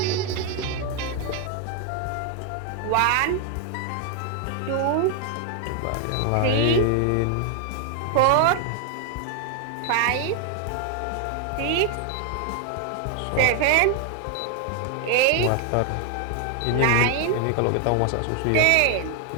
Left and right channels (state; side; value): different; both; correlation 0.00